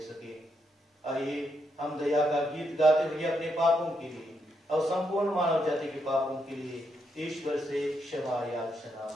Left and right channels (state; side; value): normal; both; correlation 0.80